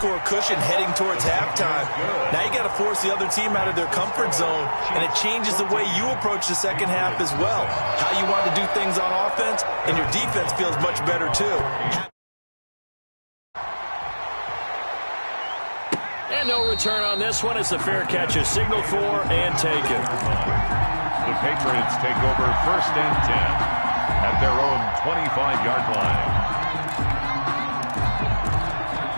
cushion heading towards halftime. Now you got to force the other team out of their comfort zone, and it changes the way you approach the second half as well. How you want to do things on offense, and your defense feels much better too. And no return on this one as the fair catch is signaled for and taken. The Patriots take over 1st and 10 at their own 25-yard line.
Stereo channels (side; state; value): both; inverted; correlation -1.00